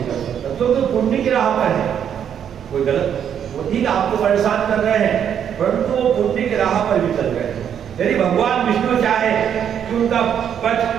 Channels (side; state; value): left; quieter; 8.8 dB